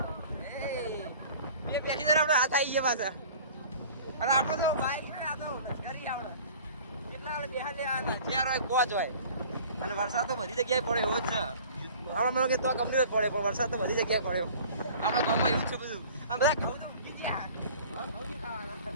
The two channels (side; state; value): both; inverted; correlation -0.46